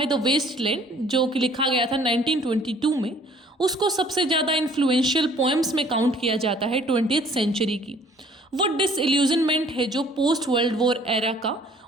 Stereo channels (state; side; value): normal; both; correlation 0.56